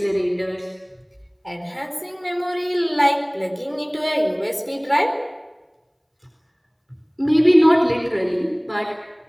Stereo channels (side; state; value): both; identical; correlation 1.00